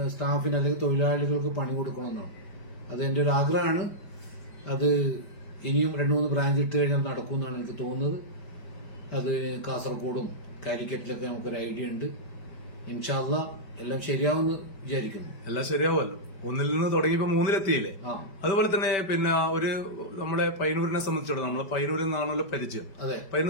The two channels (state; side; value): late; right; 5.1 ms